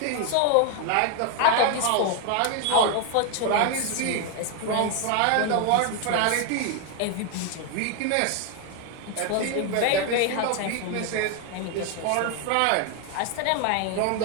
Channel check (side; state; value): both; different; correlation 0.01